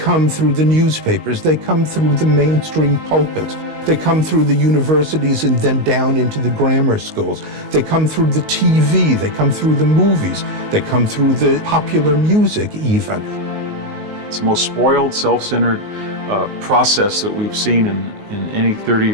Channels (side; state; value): left; late; 19 ms